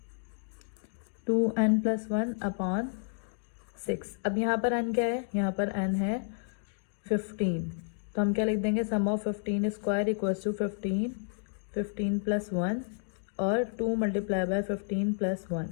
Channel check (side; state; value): right; silent; digital silence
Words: 2n plus 1 upon 6. अब यहाँ पर n क्या है? यहाँ पर n है 15. तो हम क्या लिख देंगे? Sum of 15 square equals to 15 plus 1 और 2 मल्टीप्लाई बाय 15 प्लस 1.